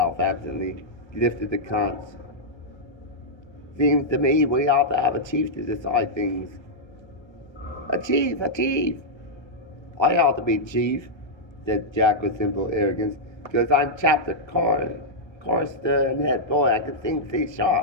absently. He lifted the conch. Seems to me we ought to have a chief to decide things. A chief, a chief. I ought to be chief, said Jack with simple arrogance, because I'm chapter chorister and head boy. I can sing C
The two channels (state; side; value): late; right; 1.3 ms